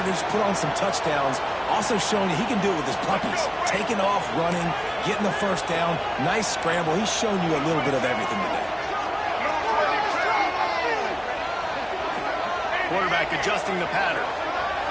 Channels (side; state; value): both; identical; correlation 1.00